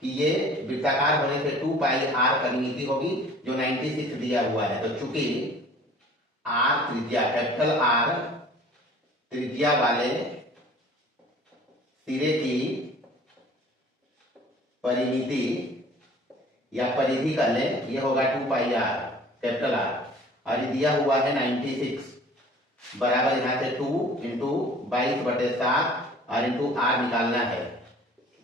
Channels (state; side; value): normal; both; correlation 0.49